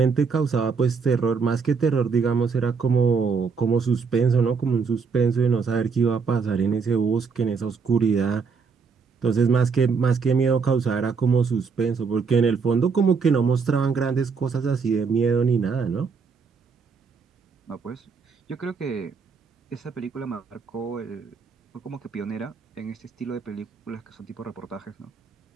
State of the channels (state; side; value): quieter; left; 5.3 dB